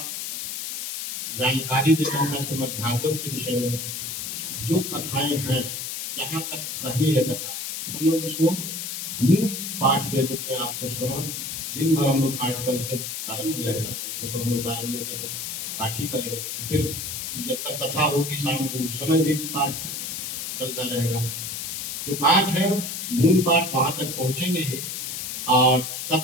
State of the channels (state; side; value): noise; left; hiss, 5 dB below the sound